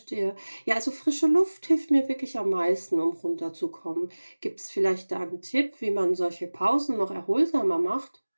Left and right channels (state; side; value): inverted; both; correlation -1.00